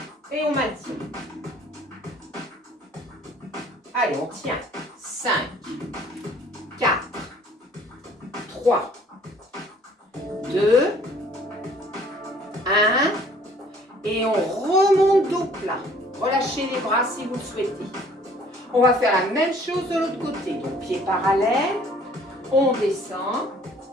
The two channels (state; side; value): normal; both; correlation 0.56